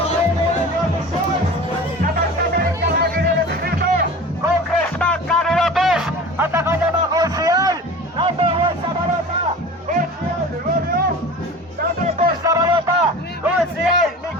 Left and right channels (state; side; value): normal; both; correlation 0.37